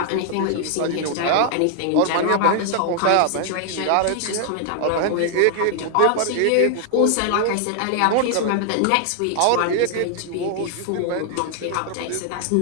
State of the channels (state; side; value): different; both; correlation 0.00